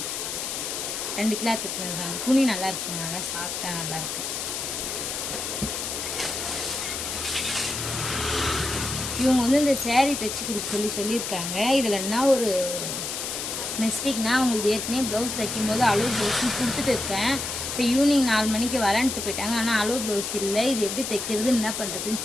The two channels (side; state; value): left; noise; hiss, 4 dB below the sound